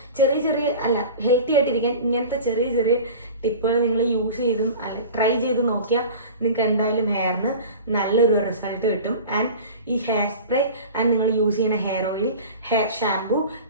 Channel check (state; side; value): inverted; both; correlation -0.37